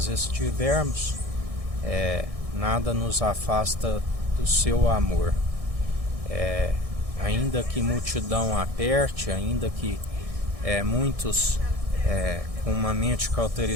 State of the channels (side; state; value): left; late; 1.6 ms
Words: estivermos, nada nos afasta do seu amor. Ainda que multidão aperte, ainda que muitos com uma mente